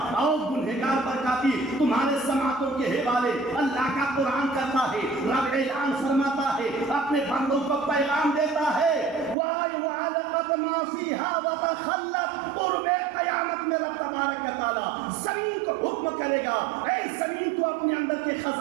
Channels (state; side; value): drops out; left; at 9.3 s